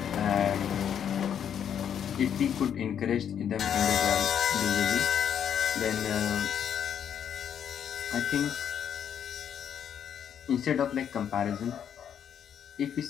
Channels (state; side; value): quieter; right; 8.7 dB